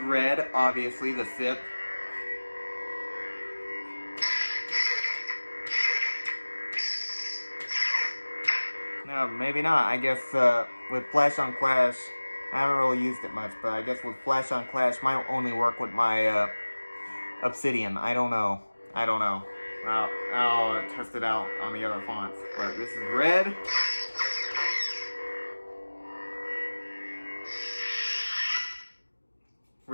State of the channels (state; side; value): inverted; both; correlation -1.00